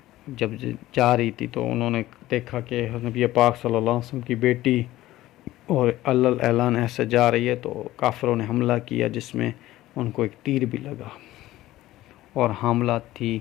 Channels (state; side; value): quieter; right; 15.9 dB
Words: جب جا رہی تھی تو انہوں نے دیکھا کہ نبی پاک صلی اللہ علیہ وسلم کی بیٹی اور اعلان ایسے جا رہی ہے، تو کافروں نے حملہ کیا جس میں ان کو ایک تیر بھی لگا، اور حاملہ تھی